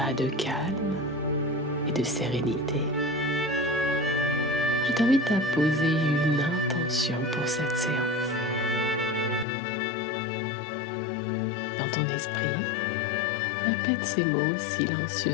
de calme et de sérénité, je t'invite à poser une intention pour cette séance. Dans ton esprit, répète ces mots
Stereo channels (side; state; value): right; drops out; at 9.5 s